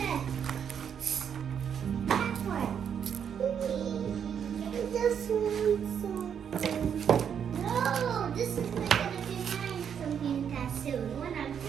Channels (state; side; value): quieter; left; 7.9 dB